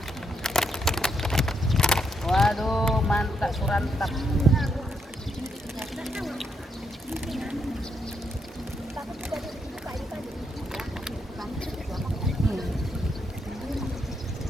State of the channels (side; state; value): both; normal; correlation 0.79